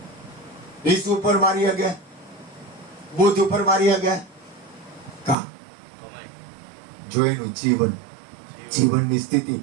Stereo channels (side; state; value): left; drops out; at 5.4 s